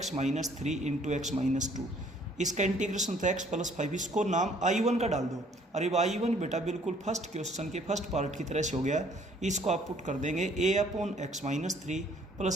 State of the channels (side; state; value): both; normal; correlation 0.61